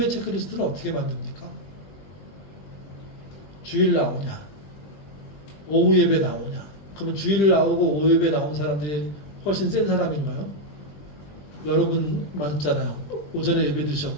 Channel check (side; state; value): right; late; 20 ms